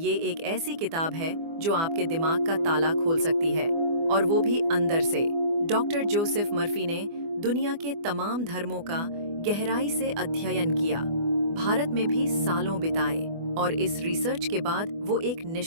एक ऐसी किताब है जो आपके दिमाग का ताला खोल सकती है, और वो भी अंदर से। डॉक्टर जोसेफ मर्फी ने दुनिया के तमाम धर्मों का गहराई से अध्ययन किया, भारत में भी सालों बिताए, और इस रिसर्च के बाद वो एक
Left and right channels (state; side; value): late; left; 24 ms